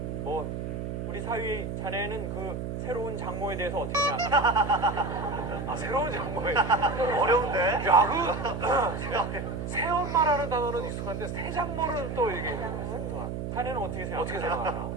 뭐 우리 사위 자네는 그 새로운 장모에 대해서 어떻게 생각하나? 아, 새로운 장모에. 어려운데? 야, 새엄마라는 단어는 익숙한데 새장모는 또 이게 생소한. 자네는 어떻게 생각하나? 어떻게 생각하나?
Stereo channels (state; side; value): noise; right; hum, 4 dB below the sound